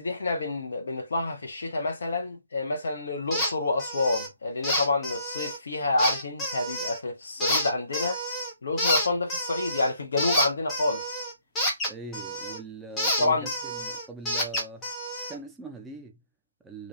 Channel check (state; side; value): inverted; both; correlation -0.67